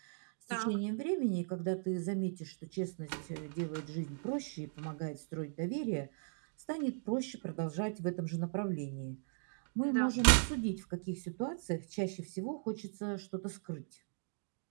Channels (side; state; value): left; silent; digital silence